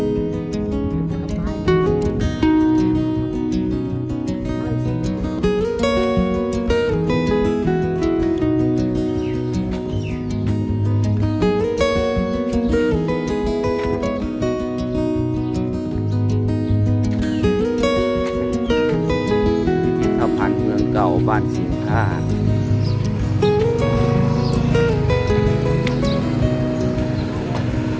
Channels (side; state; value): both; identical; correlation 1.00